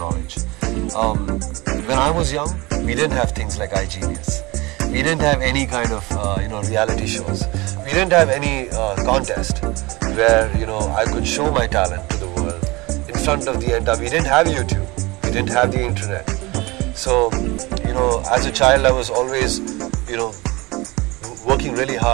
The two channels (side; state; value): left; quieter; 22.9 dB